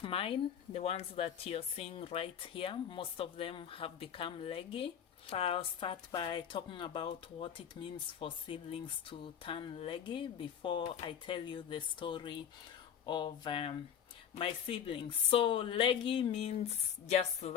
mine, the ones that you're seeing right here, most of them have become leggy. I'll start by talking about what it means for seedlings to turn leggy before I tell you the story of my seedlings. So leggy means just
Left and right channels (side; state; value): right; quieter; 8.6 dB